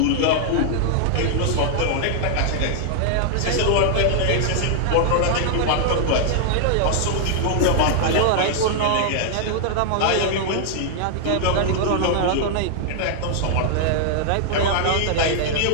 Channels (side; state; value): both; different; correlation -0.01